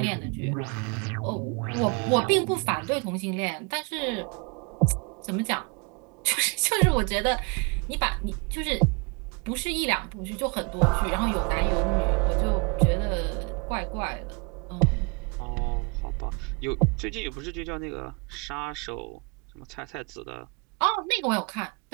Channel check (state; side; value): quieter; left; 31.8 dB